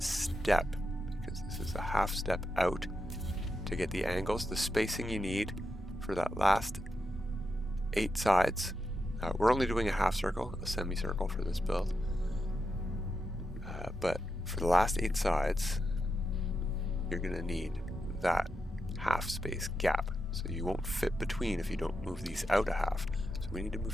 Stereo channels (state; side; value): normal; both; correlation 0.86